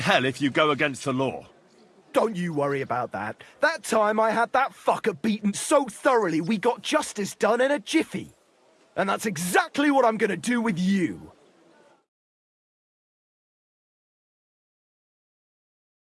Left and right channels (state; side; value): identical; both; correlation 1.00